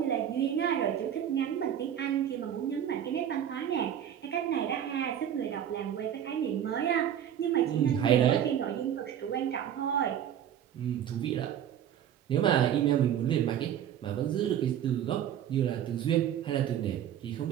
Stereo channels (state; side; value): quieter; left; 9.9 dB